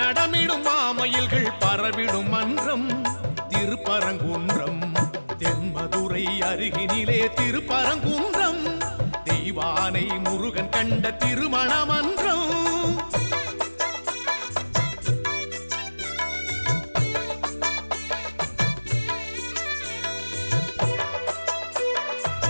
மாமயில்கள் பரவிடும் மன்றம் திருப்பரங்குன்றம் தென்மதுரை அருகினிலே திருப்பரங்குன்றம் தெய்வானை முருகன் கண்ட திருமண மன்றம்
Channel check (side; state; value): both; inverted; correlation -1.00